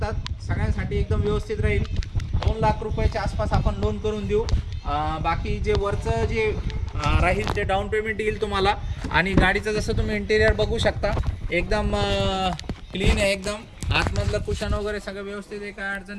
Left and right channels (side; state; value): both; identical; correlation 1.00